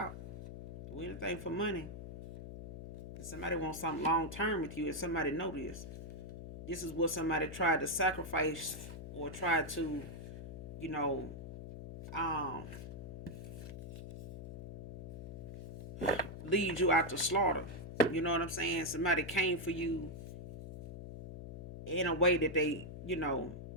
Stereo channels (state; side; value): noise; left; hum, 10 dB below the sound